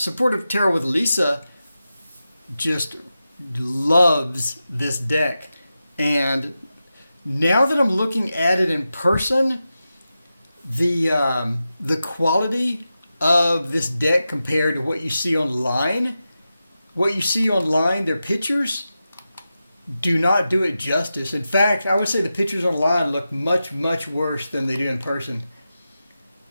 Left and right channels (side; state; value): both; inverted; correlation -0.92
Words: Tarot with Lisa just loves this deck. And now that I'm looking at it in person, the quality of this deck compared to what you see online, their pictures do not do it justice. In fact, I would say the pictures online look much, much worse than they do in person.